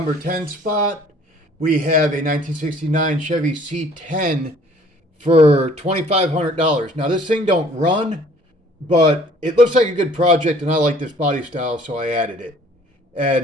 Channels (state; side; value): normal; both; correlation 0.55